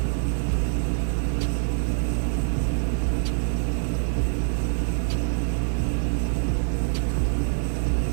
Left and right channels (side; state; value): left; silent; 57 dB below the other